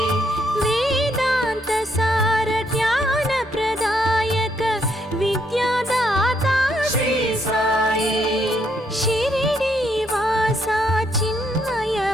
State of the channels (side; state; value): both; normal; correlation 0.74